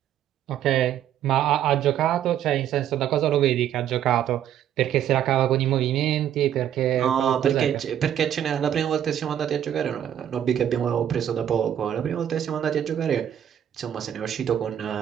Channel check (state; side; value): quieter; left; 10.4 dB